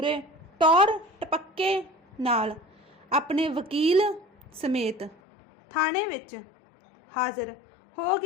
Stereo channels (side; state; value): right; drops out; at 5.2 s